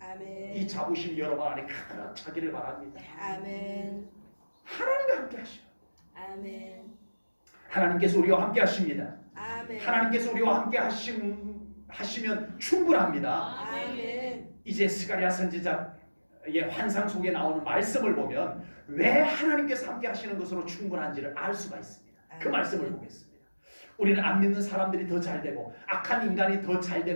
아멘. 이 자부심이 여러분 안에 가득 차기를 바랍니다. 아멘. 하나님과 함께 하셔. 아멘. 하나님께서 우리와 함께 하십니다. 아멘. 하나님께서 우리와 함께 하시면 충분합니다. 아멘. 이제 스가랴 선지자의 환상 속에 나오는 말씀을 보면 왜 하나님께서 함께 하시는 것으로 충분한지를 알 수가 있습니다. 그 말씀을 보겠습니다. 우리는 안 믿는 사람들이 더 잘 되고 악한 인간이 더 잘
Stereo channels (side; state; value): both; inverted; correlation -1.00